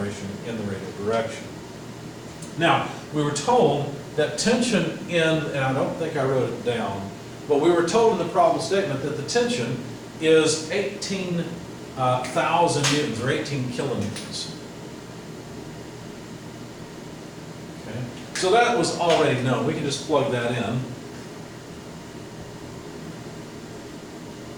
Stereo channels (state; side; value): identical; both; correlation 1.00